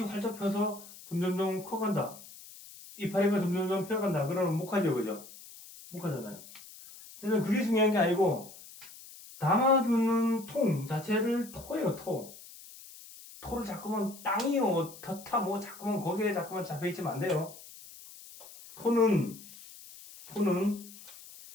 활짝 펴서 점점점 커간다. 이파리가 점점점 펴간다. 그러면 목하죠, 그죠? 목하잖아요. 저는 그게 중요한 게 아니고, 담아두는 통 자체를 토예요, 토. 토를 자꾸만 땅이요, 터타, 자꾸만 거기에 자꾸만 잡혀있으면 안 돼요. 토는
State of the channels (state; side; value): noise; left; hiss, 18 dB below the sound